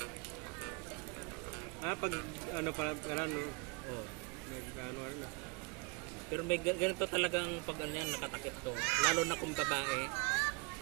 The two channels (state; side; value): quieter; left; 31.4 dB